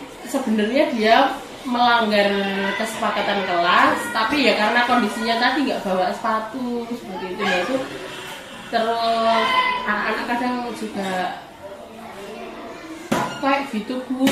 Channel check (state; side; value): identical; both; correlation 1.00